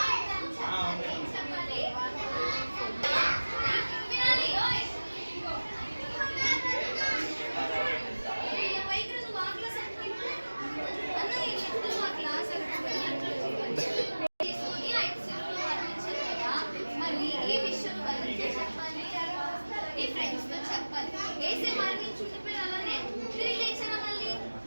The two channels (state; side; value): inverted; both; correlation -1.00